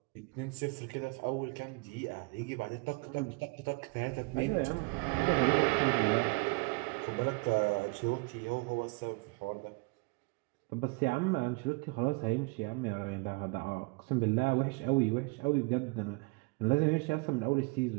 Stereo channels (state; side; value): quieter; left; 28.4 dB